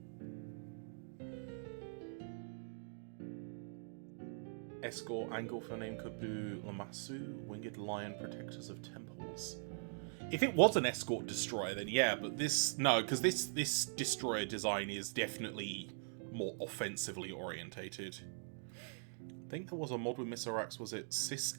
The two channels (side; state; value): left; silent; digital silence